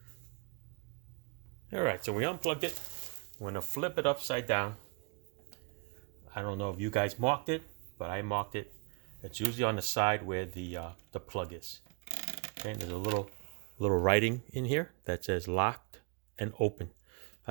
All right, so we unplugged it. I'm going to flip it upside down. I don't know if you guys marked it, but I marked it. It's usually on the side where the plug is. Okay, and there's a little writing in here that says locked and open.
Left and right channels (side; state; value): left; quieter; 31.5 dB